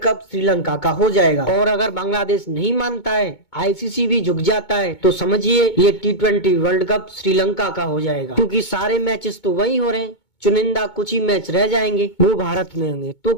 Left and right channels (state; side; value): late; right; 2.2 ms